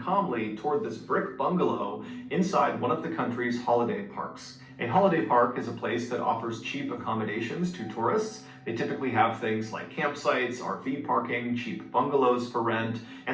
toward this brick bungalow inside one of the country's holiday parks. A holiday park is a place that offers cheap accommodations to tourists. They typically have things like campsites, RV parking, cheap bungalows for rent,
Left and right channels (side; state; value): both; identical; correlation 1.00